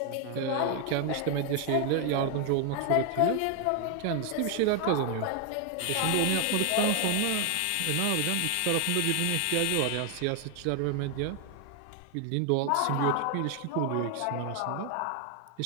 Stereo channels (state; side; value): different; both; correlation 0.00